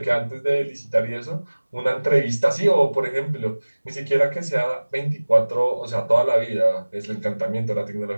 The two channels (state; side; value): inverted; both; correlation -1.00